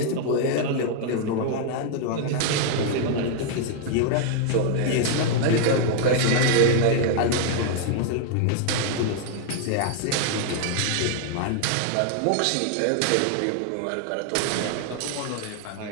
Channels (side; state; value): both; different; correlation 0.00